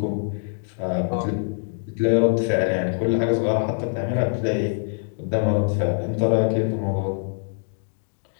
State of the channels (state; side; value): silent; right; digital silence